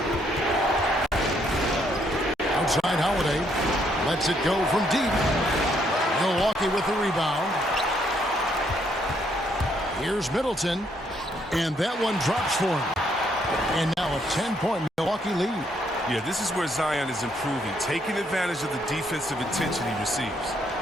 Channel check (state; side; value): normal; both; correlation 0.72